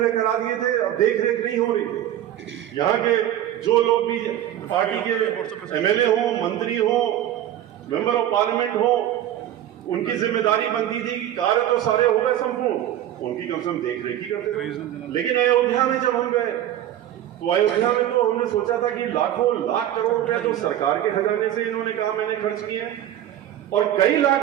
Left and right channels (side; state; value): left; quieter; 12.0 dB